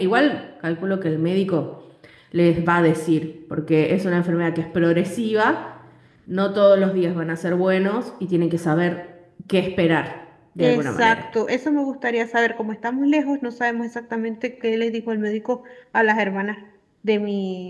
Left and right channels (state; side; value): identical; both; correlation 1.00